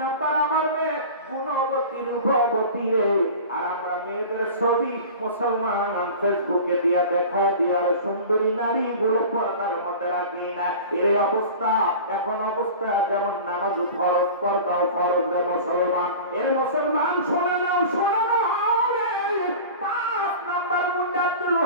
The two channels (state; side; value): inverted; both; correlation -0.37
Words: নম্বর আমার মেয়ে গুণবতী রূপবতী রে। আর আমরা মেয়েদের ছবি মুসলমান ফেসবুকে দিয়া দেখা দিয়ার সুন্দরী নারী গুলো পর্দার মধ্যে রাখি না। এর অবস্থা এখন অবস্থা যেমন নামাজ ফরজ, পর্দাও ফরজ রে মুসলমান। এর মুসলমান শোনে নাও, শোনে নাও রে। 5 নম্বর গুণ আব্দুল